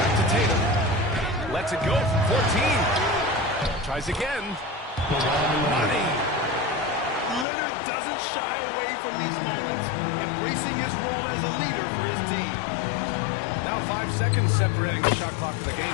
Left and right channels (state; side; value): drops out; right; at 7.5 s